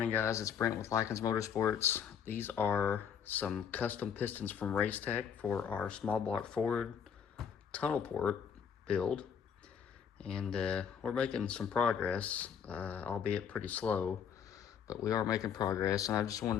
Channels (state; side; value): quieter; right; 7.6 dB